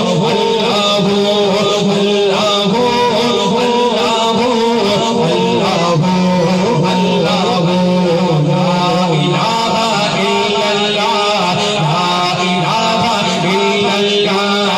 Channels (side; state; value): both; identical; correlation 1.00